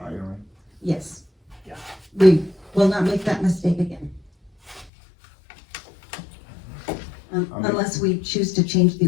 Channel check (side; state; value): right; drops out; at 4.9 s